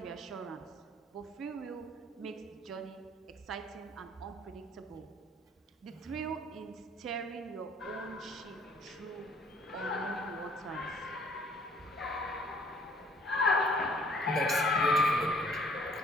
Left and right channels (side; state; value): both; normal; correlation 0.58